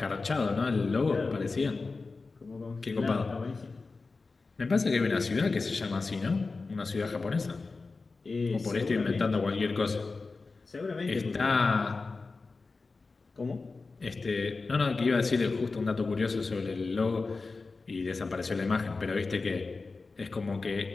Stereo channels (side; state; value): right; quieter; 4.0 dB